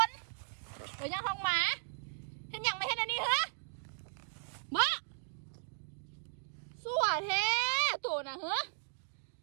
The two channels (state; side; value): silent; left; digital silence